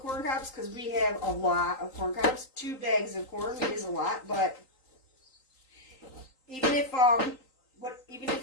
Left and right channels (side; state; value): right; late; 3.9 ms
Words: cobs because we have a lot of corn cobs. 2 bags of corn is a lot, but even if